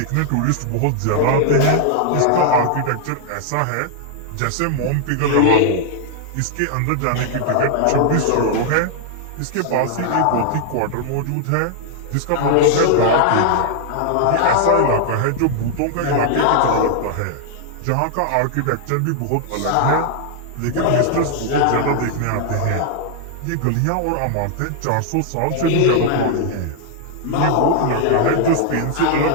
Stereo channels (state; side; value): different; both; correlation 0.00